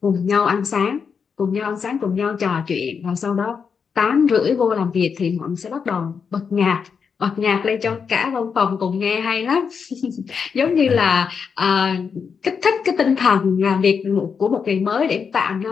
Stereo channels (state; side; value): quieter; right; 6.1 dB